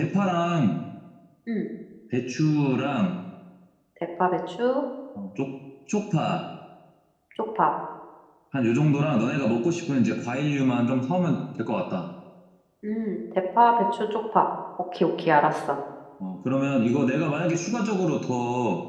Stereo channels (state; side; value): identical; both; correlation 1.00